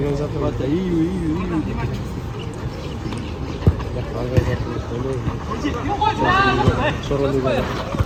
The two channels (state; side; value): identical; both; correlation 1.00